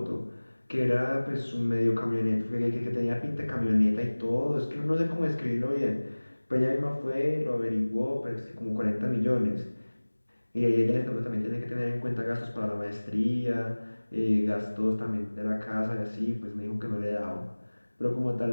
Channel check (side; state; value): both; inverted; correlation -1.00